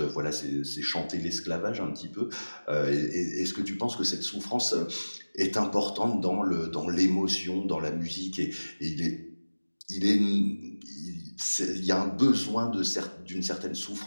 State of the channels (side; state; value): both; inverted; correlation -1.00